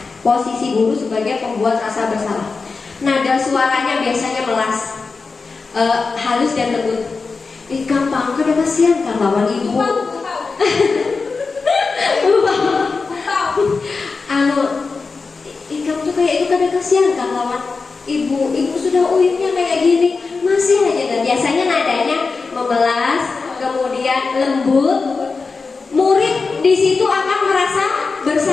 Posisi guru sebagai pembuat rasa bersalah. Nada suaranya biasanya melas, halus dan lembut. Gampang, kada kasihan kan lawan ibu. Kamu tuh kayak itu kada kasihan kan lawan ibu sudah uyutnya kayak gini, masih aja. Dan biasanya nadanya memelas, kemudian lembut. Murid di situ akan merasa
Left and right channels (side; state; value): right; quieter; 4.4 dB